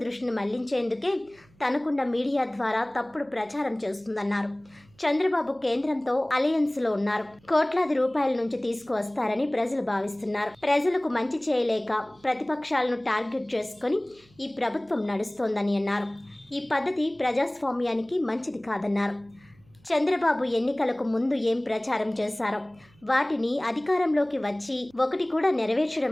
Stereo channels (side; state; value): right; noise; hum, 30 dB below the sound